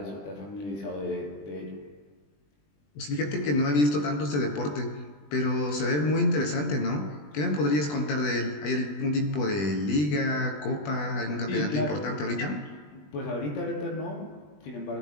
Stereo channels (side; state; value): right; late; 20 ms